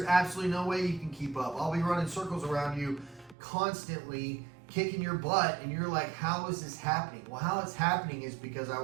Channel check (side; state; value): left; drops out; at 3.4 s